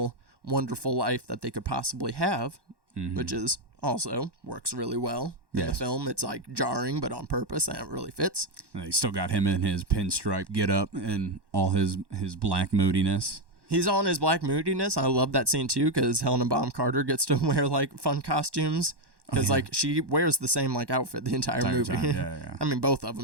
wonderful life that they could possibly have, which is also works really well in the film. It's like jarring, but on purpose, and it really fits. And they still got him in his pinstripe get up and all his black moodiness. He's on his black moodiness. I love that scene too because Helena Bonham Carter gets to wear like fun costumes because like she wears the same like outfit the entire movie. Time. Yeah. I mean, both of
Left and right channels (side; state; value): left; late; 1.1 ms